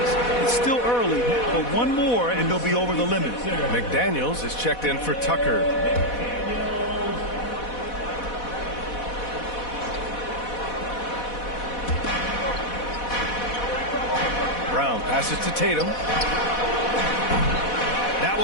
It's still early, but one more and they'll be over the limit. McDaniels is checked in for Tucker. Brown passes to Tatum. That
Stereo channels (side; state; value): right; late; 4.1 ms